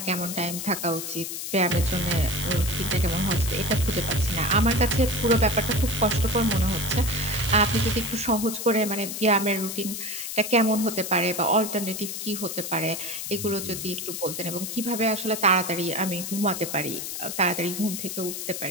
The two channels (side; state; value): left; noise; hiss, 6 dB below the sound